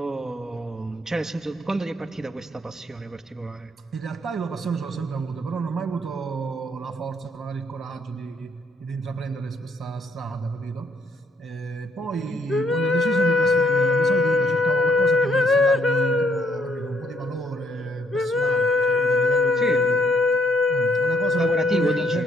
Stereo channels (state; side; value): normal; both; correlation 0.69